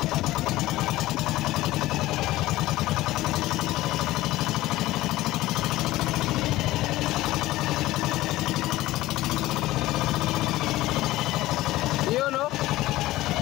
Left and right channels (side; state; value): right; quieter; 16.9 dB